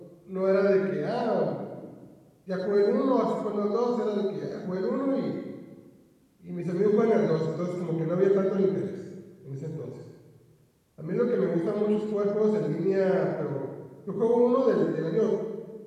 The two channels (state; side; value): identical; both; correlation 1.00